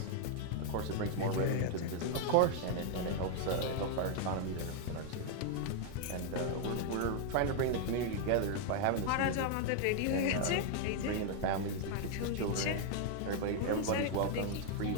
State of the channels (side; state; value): both; different; correlation 0.00